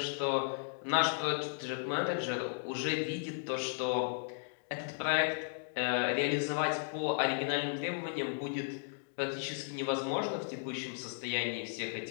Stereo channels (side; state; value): right; silent; digital silence